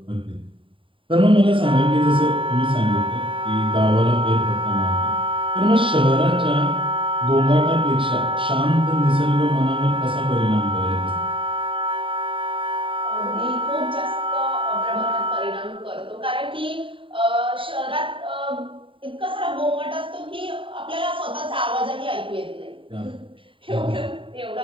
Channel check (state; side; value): late; left; 0.25 ms